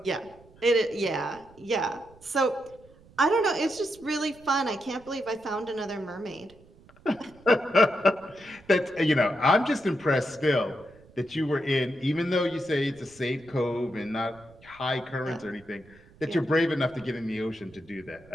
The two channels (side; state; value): right; noise; rumble, 25 dB below the sound